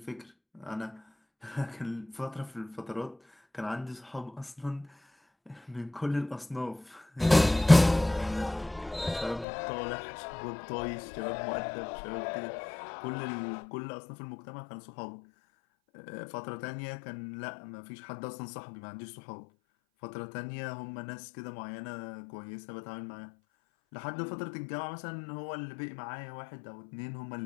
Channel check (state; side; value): drops out; right; at 9.5 s